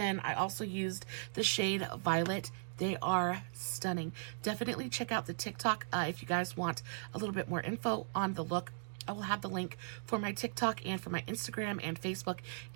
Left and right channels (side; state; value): left; silent; digital silence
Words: I also used the shade Violet. They are stunning. Definitely check out the TikTok if you guys want a little bit more info on the look. I will have the link for my TikTok and for my Instagram and Facebook